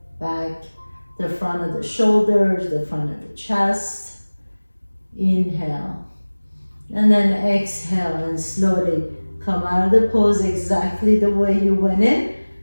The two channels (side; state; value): both; inverted; correlation -1.00